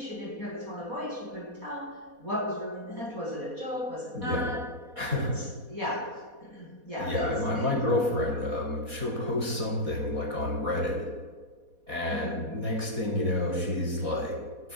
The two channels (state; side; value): late; left; 4.2 ms